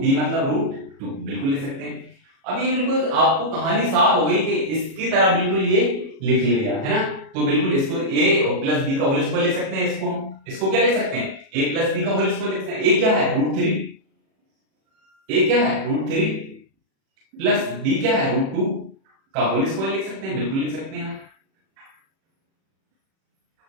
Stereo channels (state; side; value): late; left; 37 ms